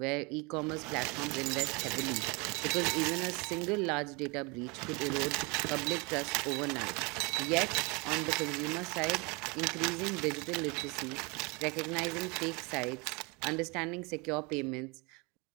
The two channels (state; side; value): quieter; left; 28.4 dB